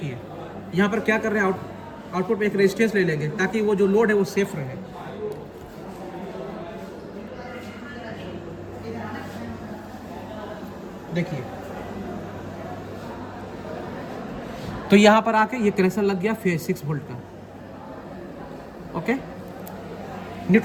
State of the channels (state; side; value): identical; both; correlation 1.00